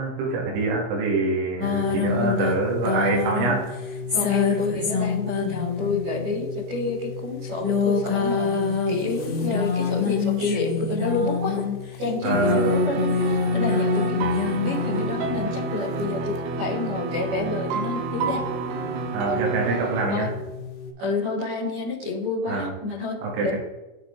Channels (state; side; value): late; left; 25 ms